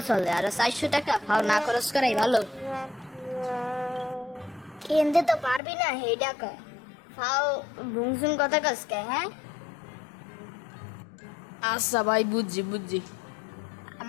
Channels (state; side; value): drops out; right; at 5.6 s